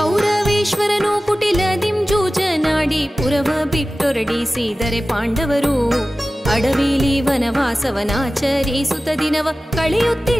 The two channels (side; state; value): both; normal; correlation 0.96